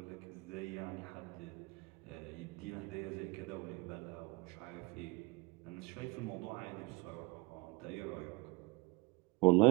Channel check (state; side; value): quieter; left; 24.2 dB